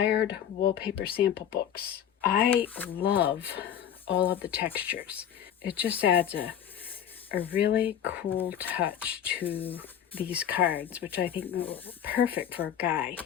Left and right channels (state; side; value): quieter; right; 9.7 dB